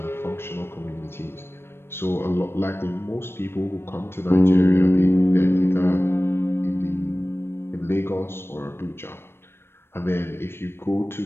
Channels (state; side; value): late; right; 0.12 ms